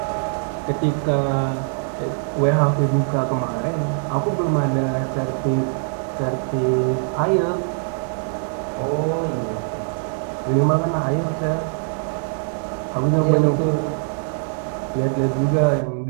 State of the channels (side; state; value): left; silent; 62 dB below the other